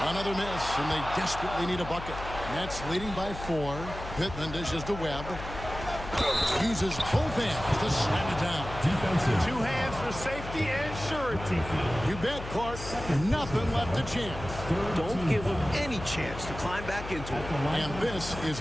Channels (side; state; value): left; noise; hum, 10 dB below the sound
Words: Another miss, and they desperately need a bucket. Nets leading by 4. Pittman dishes to Webb. Uses both hands to slam it down. Defensive. 2 hands for safety and surety. You bet, Clark. Nothing left to chance. Don't give him any chance to climb back into it. And this is